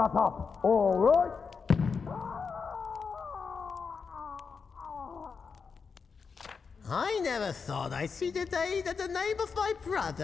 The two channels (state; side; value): quieter; right; 5.4 dB